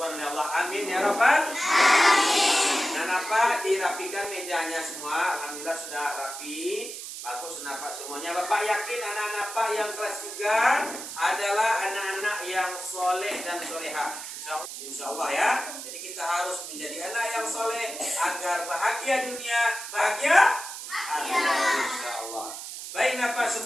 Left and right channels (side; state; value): right; noise; hiss, 9 dB below the sound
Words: oleh Allah. Amin ya Rabbal. Nah, Bapak dirapikan mejanya semua. Alhamdulillah sudah rapi. Bagus Bapak semuanya. Bapak yakin anak-anak Bapak yang kelas 3 adalah anak-anak yang soleh dan soleha. Insya Allah ya. Jadi kita harus menjadi anak yang soleh agar bahagia dunia, bahagia akhirat. Insya Allah. Baik Bapak